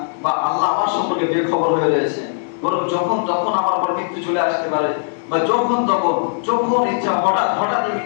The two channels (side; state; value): right; silent; digital silence